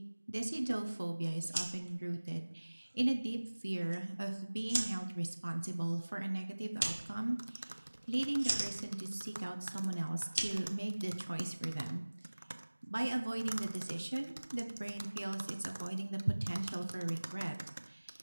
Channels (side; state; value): both; inverted; correlation -1.00